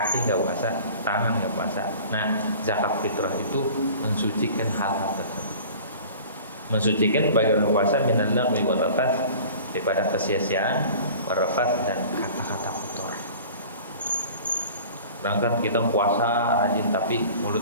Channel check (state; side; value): inverted; both; correlation -0.43